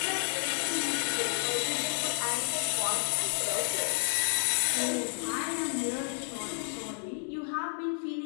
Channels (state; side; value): silent; right; digital silence